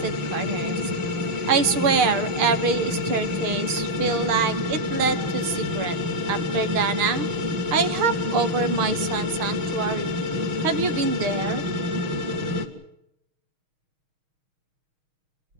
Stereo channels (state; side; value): late; left; 6.4 ms